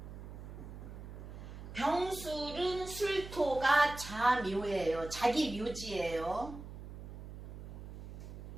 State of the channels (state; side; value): noise; right; hum, 12 dB below the sound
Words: 병술은 술토가 자묘예요. 자기 묘지예요.